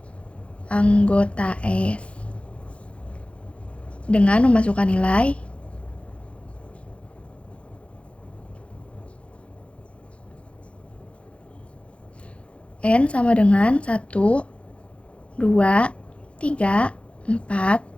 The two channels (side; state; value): right; late; 0.061 ms